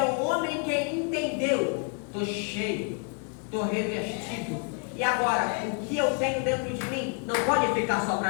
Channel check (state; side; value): quieter; right; 37.7 dB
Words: o homem que entendeu: estou cheio, estou revestido. E agora, o que eu tenho dentro de mim não pode ficar só